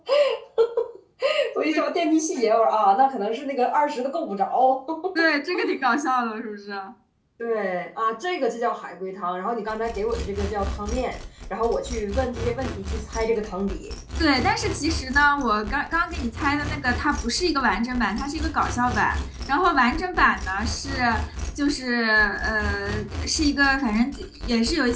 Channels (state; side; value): identical; both; correlation 1.00